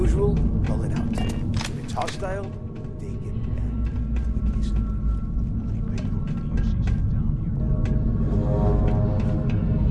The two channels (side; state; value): both; identical; correlation 1.00